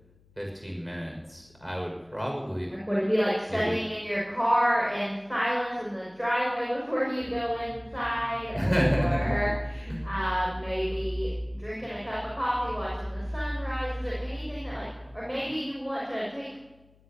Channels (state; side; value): noise; left; hum, 30 dB below the sound